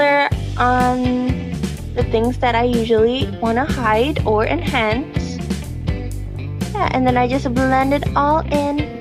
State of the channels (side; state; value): both; identical; correlation 1.00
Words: on the things that I usually want to hide or enhance. Yeah, and then I just blend it all